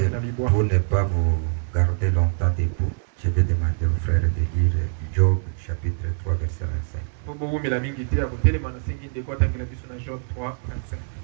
pas vous garder longtemps debout, je vais demander au frère de lire Job chapitre 3 verset 25.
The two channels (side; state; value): left; silent; digital silence